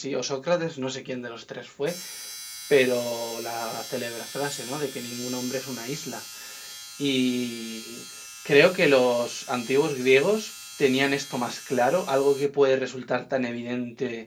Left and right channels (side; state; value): both; identical; correlation 1.00